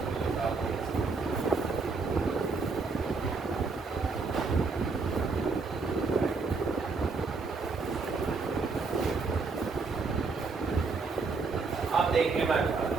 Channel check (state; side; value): quieter; left; 4.4 dB